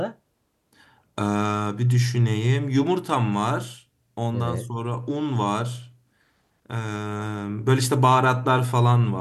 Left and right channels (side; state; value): both; identical; correlation 1.00